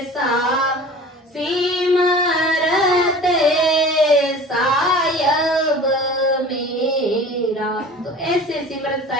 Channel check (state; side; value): normal; both; correlation 0.41